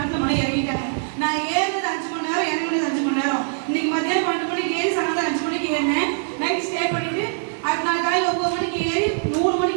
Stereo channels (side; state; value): left; silent; 64 dB below the other